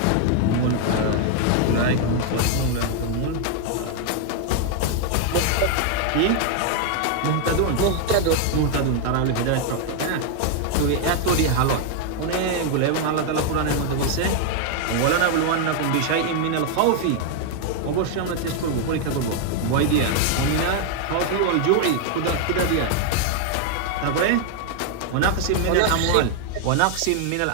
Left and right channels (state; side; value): different; both; correlation 0.00